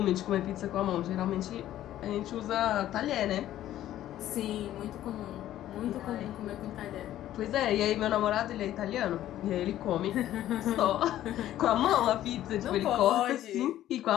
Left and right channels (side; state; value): right; quieter; 12.9 dB